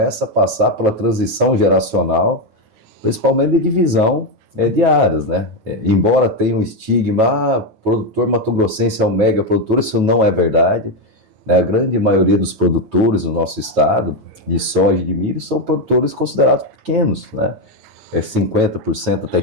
a passar pela transição geracional, principalmente de divisão de áreas, né? Embora tenha um estigma, produtor mato-grossense é um mega produtor, isso não é verdade, né? A grande maioria dos produtores no nosso estado, de soja e de milho, são produtores considerados pequenos, né? 50% até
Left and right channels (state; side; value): late; left; 9.2 ms